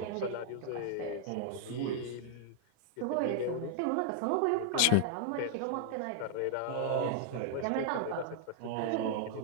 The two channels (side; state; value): both; different; correlation 0.00